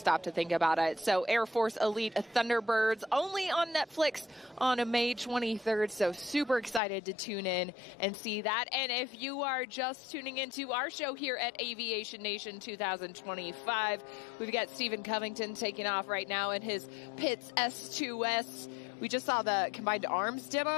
to think about it. So Air Force Elite Thunderbirds only on Netflix on May 23rd. So super excited to tune in and see that. And if you are just tuning into our show here at Aviation Nation 2025, we've got Stephen Covington taking off right now in his Pitts S2S. We just saw the combined arms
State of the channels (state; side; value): drops out; right; at 6.8 s